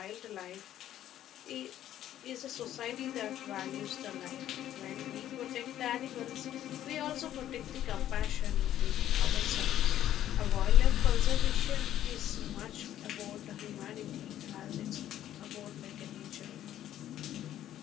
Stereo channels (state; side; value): quieter; right; 12.0 dB